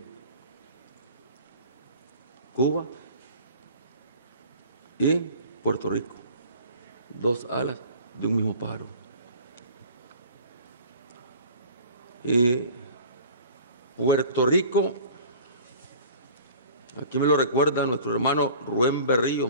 Cuba y Puerto Rico, dos alas de un mismo pájaro. Y Puerto Rico, aquí me lo recuerda nuestro hermano Rubén Berríos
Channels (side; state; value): both; inverted; correlation -0.44